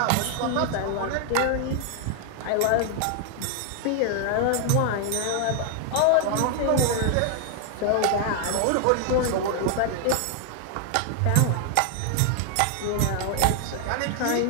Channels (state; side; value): different; both; correlation 0.00